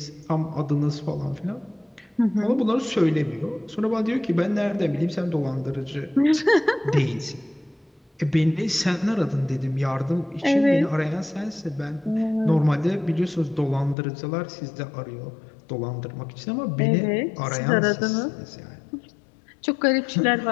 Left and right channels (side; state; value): right; drops out; at 14.0 s